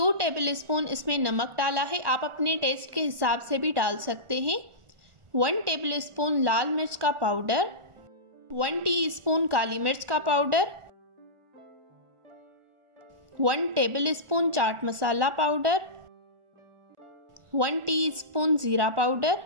टेबल स्पून इसमें नमक डाला है। आप अपने टेस्ट के हिसाब से भी डाल सकते हैं। 1 टेबल स्पून लाल मिर्च का पाउडर, 1 टीस्पून काली मिर्च का powder, 1 table spoon chaat masala powder, 1 teaspoon जीरा पाउडर,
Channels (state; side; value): late; left; 1.4 ms